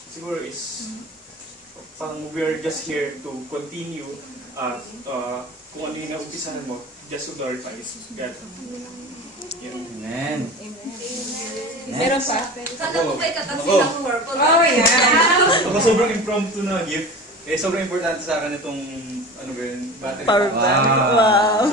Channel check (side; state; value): both; normal; correlation 0.34